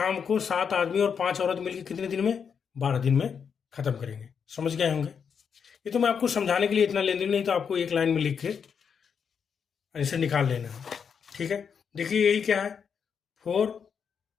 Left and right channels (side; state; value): right; quieter; 6.8 dB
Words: को 7 आदमी और 5 औरत मिलकर कितने दिन में 12 दिन में खत्म करेंगे। समझ गए होंगे। ये तो मैं आपको समझाने के लिए इतना लेंदी नहीं, तो आपको एक लाइन में लिख के ऐसे निकाल लेना है। ठीक है। देखिए यही क्या है 4